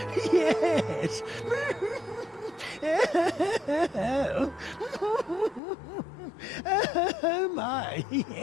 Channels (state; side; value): drops out; right; at 5.6 s